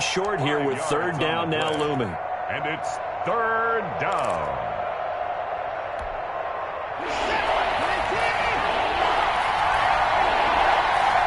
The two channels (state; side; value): identical; both; correlation 1.00